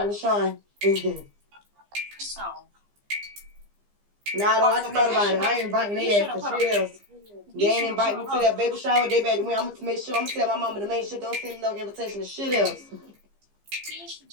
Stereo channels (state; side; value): late; left; 15 ms